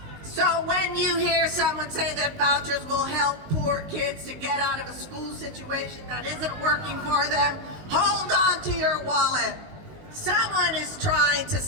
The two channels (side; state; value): left; late; 19 ms